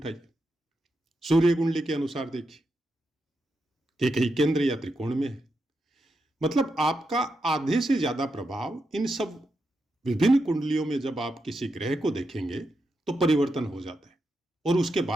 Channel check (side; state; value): both; normal; correlation 0.85